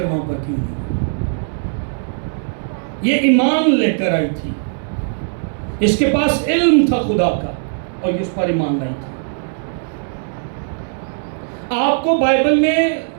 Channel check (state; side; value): silent; left; digital silence